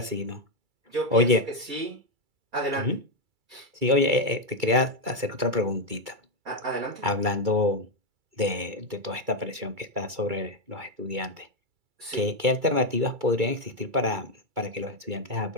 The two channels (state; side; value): late; left; 2.3 ms